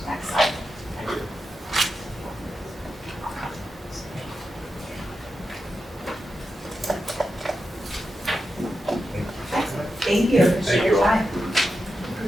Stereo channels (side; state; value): both; normal; correlation 0.89